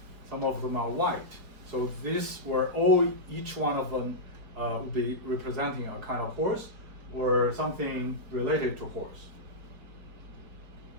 some of them are white. So these were each one of them would be representing a kind of horse or something related to horse.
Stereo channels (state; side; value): late; left; 4.7 ms